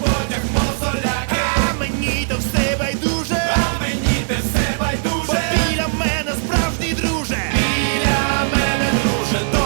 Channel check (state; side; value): silent; left; digital silence